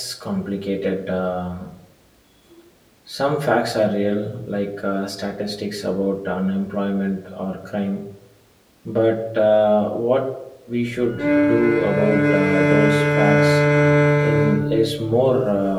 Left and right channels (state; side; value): identical; both; correlation 1.00